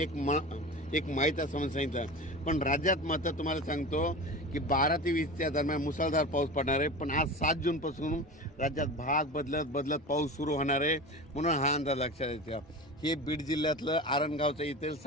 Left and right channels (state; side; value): normal; both; correlation 0.31